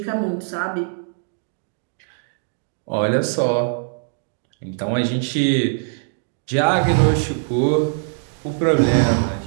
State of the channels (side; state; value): left; silent; 64 dB below the other